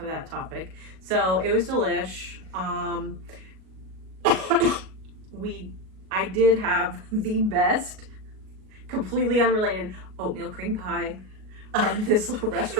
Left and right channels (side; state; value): left; late; 38 ms